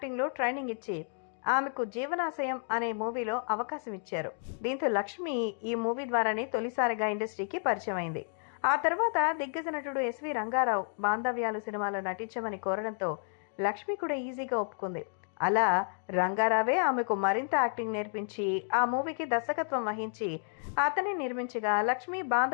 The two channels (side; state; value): right; silent; 57 dB below the other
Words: ట్రైనింగ్ ఇచ్చి ఆమెకు జీవనాశయం అనే మూవీలో అవకాశం ఇచ్చారు. దీంతో లక్ష్మి ఈ మూవీ ద్వారానే తొలిసారిగా ఇండస్ట్రీకి పరిచయం అయింది. ఆ తర్వాత దిగ్గజ నటుడు ఎస్వి రంగారావు బాంధవ్యాలు సినిమాలో నటించమని కోరడంతో లక్ష్మి కూడా ఈజీగా ఒప్పుకుంది. అలా రంగారావే ఆమెకు మరింత యాక్టింగ్ నేర్పించి ఆ మూవీకి దర్శకత్వం వహించి అతన్ని నిర్మించగా లక్ష్మి